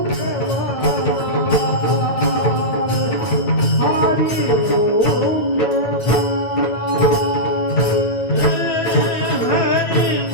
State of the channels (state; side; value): late; right; 9.1 ms